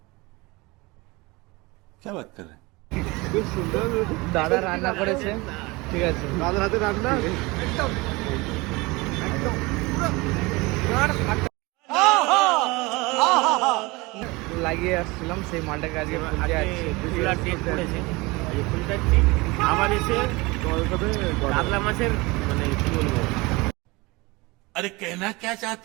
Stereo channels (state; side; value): quieter; left; 23.8 dB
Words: क्या बात कर रहे हैं? খুব সুন্দর। দাদা রান্না করেছে, ঠিক আছে, দাদার হাতে রান্না একদম লাগিয়ে আসছিলাম সেই মালটাকে আজকে ফুলতে আসছে। ফুলার ডেট পড়েছে, এই ফুলটা আবার এসে কাতলা মাছের মানে কি বলবো, अरे कहना क्या